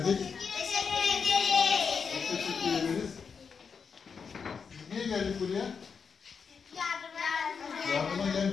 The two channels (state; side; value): quieter; right; 5.9 dB